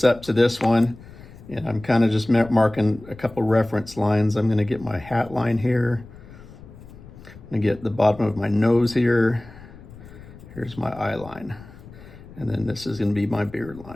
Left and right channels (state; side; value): noise; left; rumble, 19 dB below the sound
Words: up to this one, and I'm kind of just marking a couple reference lines. I'm going to get my hat line here. I'm going to get the bottom of my nose here. Here's my eye line, and then this is going to be my beard